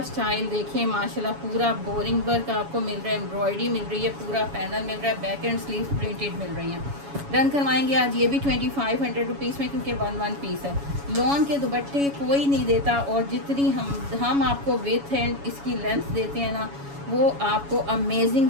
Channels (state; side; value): late; left; 7.1 ms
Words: स्टाइल देखें माशाल्लाह, पूरा बोरिंग वर्क आपको मिल रहा है, एम्ब्रॉयडरी मिल रही है, पूरा पैनल मिल रहा है, बैक एंड स्लीव प्रिंटेड मिल रही हैं। डन करवाएंगे आज ये भी 2500 रुपीज़ में, क्योंकि 1 पीस है। लॉन के दुपट्टे कोई नहीं देता, और जितनी हम आपको विथ एंड इसकी लेंथ देते हैं ना, वो आपको अमेजिंग